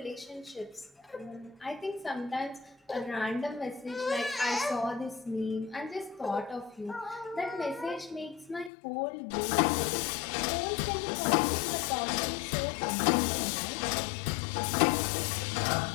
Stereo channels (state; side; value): drops out; right; at 8.7 s